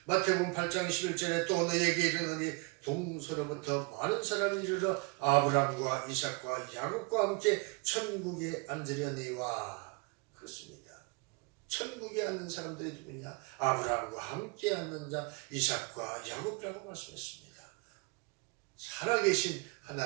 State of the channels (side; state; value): left; quieter; 30.7 dB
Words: 마태복음 8장 21절에 또 너에게 이르노니 동서로부터 많은 사람이 이르러 아브라함과 이삭과 야곱과 함께 천국에 앉으려니와. 그렇습니다. 천국에 앉는 사람들이 누구냐? 아브라함과 함께 앉는 자 이삭과 야곱이라고 말씀했습니다. 살아계신